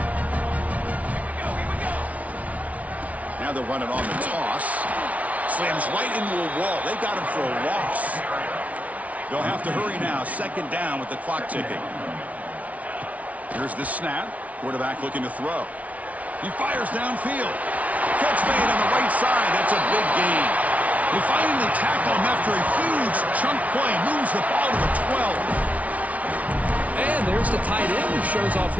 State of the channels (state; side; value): late; left; 0.068 ms